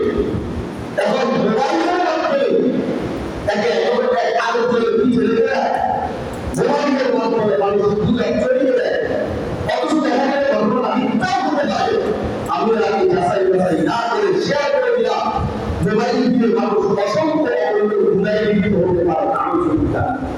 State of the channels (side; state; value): both; identical; correlation 1.00